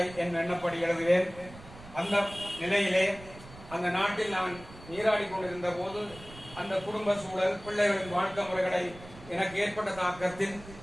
என் எண்ணப்படி எழுதுவேன். அந்த நிலையிலே அந்த நாட்டில் நான் நீராடி கொண்டிருந்த போது அந்த குடும்ப சூழல், பிள்ளைகளின் வாழ்க்கை முறைகளை எனக்கு ஏற்பட்ட தாக்கத்தில்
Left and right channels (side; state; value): right; noise; rumble, 18 dB below the sound